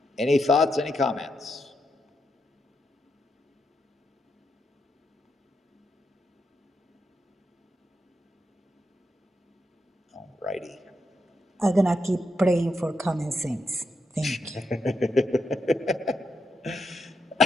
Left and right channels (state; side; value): normal; both; correlation 0.83